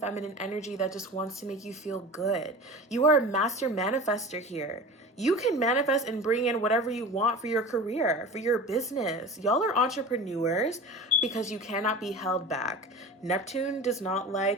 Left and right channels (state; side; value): normal; both; correlation 0.34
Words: energy that just wants to make you feel good. You are a master manifester here. You can manifest and bring in whatever you want for your career, for your business. Y'all are entrepreneurs because you cannot be held back. Neptune does not